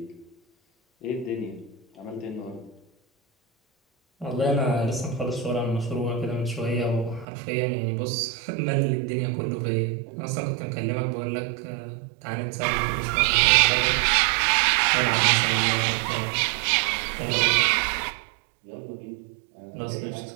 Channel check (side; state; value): left; drops out; at 7.2 s